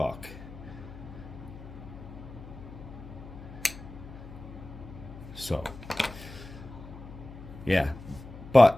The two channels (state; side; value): noise; left; hum, 14 dB below the sound